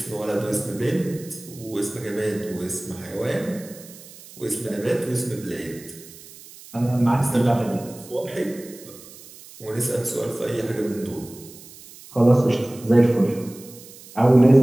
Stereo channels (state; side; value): noise; right; hiss, 19 dB below the sound